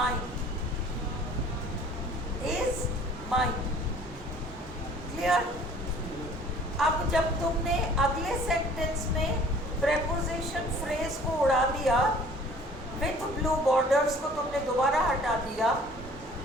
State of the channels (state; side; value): normal; both; correlation 0.51